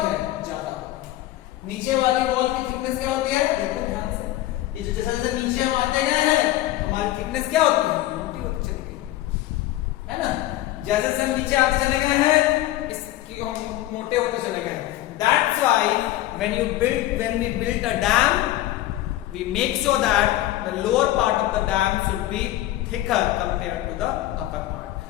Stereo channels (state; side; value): quieter; right; 15.3 dB